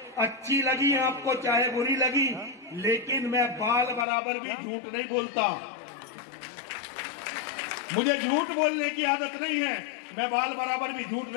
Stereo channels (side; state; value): right; drops out; at 4.0 s